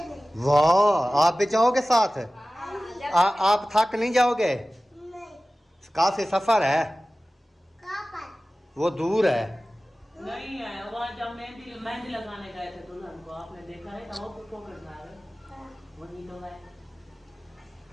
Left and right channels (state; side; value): normal; both; correlation 0.97